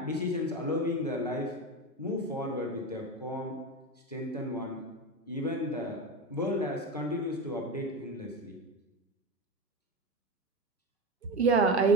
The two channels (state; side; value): normal; both; correlation 0.23